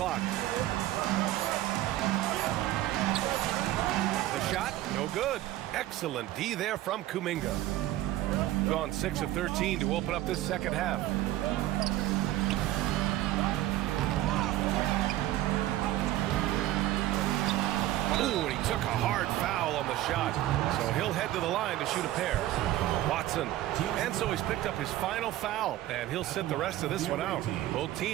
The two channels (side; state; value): left; quieter; 14.8 dB